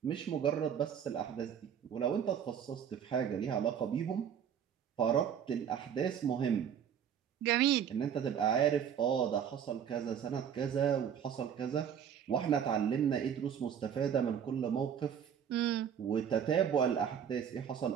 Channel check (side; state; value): left; quieter; 8.4 dB